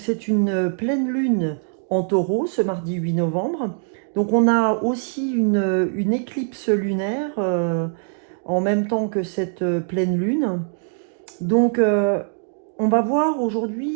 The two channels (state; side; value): silent; left; 64 dB below the other